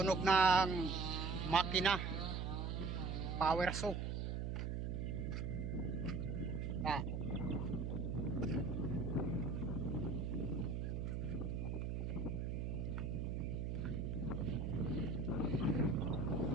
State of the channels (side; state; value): right; noise; hum, 1 dB below the sound